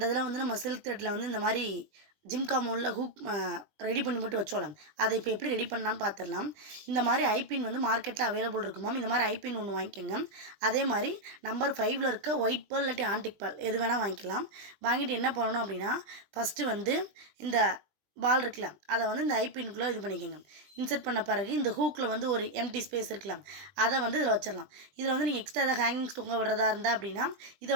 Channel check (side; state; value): left; late; 20 ms